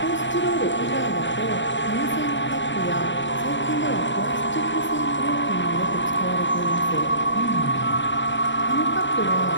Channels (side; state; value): right; late; 0.54 ms